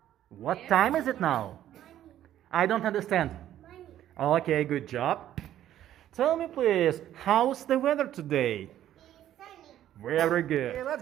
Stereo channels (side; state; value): left; quieter; 12.0 dB